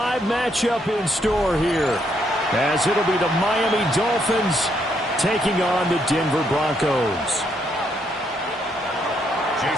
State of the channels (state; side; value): normal; both; correlation 0.74